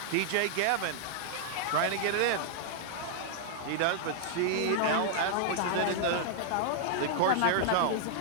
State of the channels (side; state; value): both; different; correlation -0.01